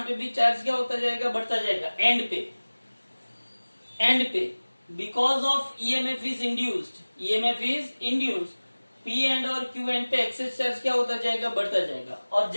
पे भी चार्ज क्या होता जाएगा, बढ़ता जाएगा एंड पे, एंड पे, because of EMF is induced, EMF is induced, P and और क्यू एंड पे एक्सेस चार्ज क्या होता जाएगा, बढ़ता जाएगा। और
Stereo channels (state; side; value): inverted; both; correlation -1.00